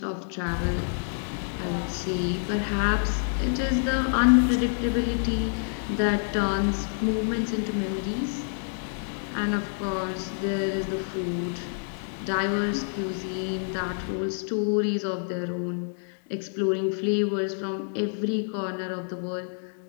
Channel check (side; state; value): right; silent; digital silence